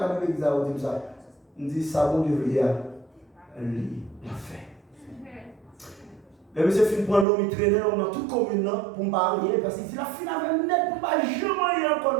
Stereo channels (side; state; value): left; drops out; at 7.2 s